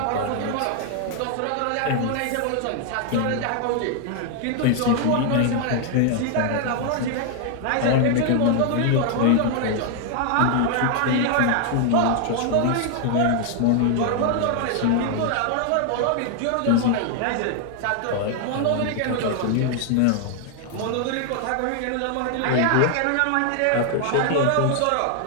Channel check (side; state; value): both; different; correlation 0.00